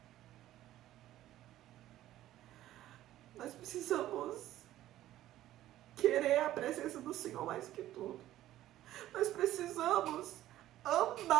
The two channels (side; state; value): left; quieter; 13.9 dB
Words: Nós precisamos querer a presença do Senhor mais que tudo. Nós precisamos